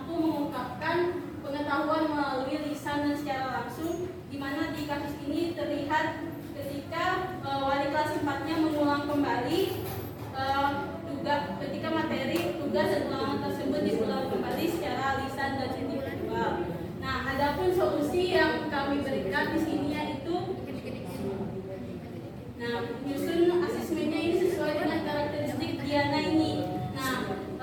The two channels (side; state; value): both; identical; correlation 1.00